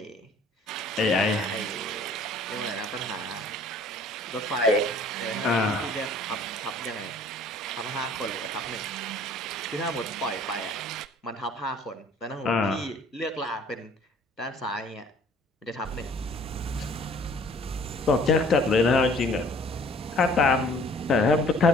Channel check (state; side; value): normal; both; correlation 0.53